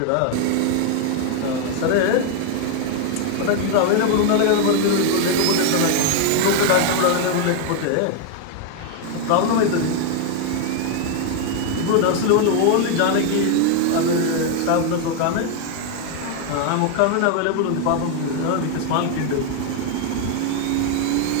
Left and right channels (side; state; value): both; different; correlation 0.01